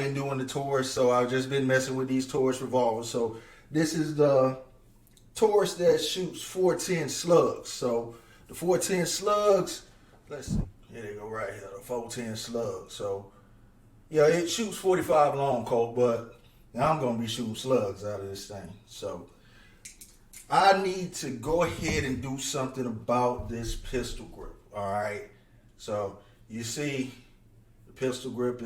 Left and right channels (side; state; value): both; identical; correlation 1.00